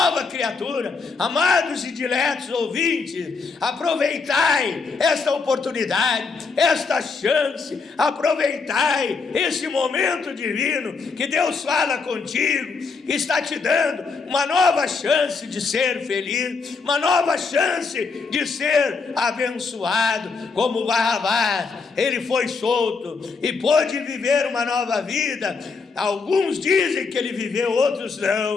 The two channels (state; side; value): quieter; right; 4.7 dB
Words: criatura. Amados e diletos ouvintes, aproveitai esta oportunidade, esta chance, aproveitai esse momento divino que Deus fala contigo, está te dando uma nova chance de ser feliz, uma nova chance de ser abençoado. Como Barrabás, ele foi solto e pôde viver uma nova vida. Alguns dizem que ele viveu, outros